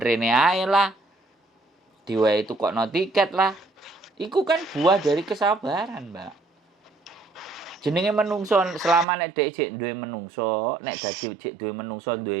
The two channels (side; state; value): left; drops out; at 9.1 s